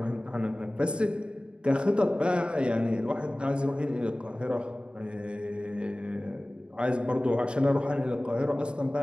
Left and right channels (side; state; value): left; late; 0.053 ms